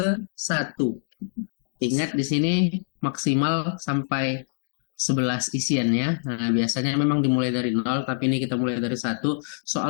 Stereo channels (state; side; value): silent; right; digital silence